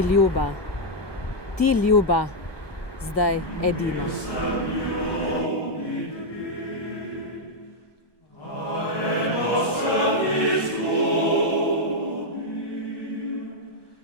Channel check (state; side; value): late; right; 1.2 ms